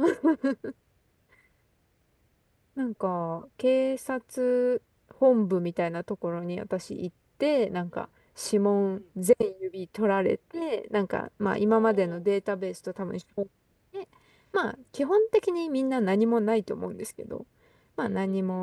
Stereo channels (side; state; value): both; identical; correlation 1.00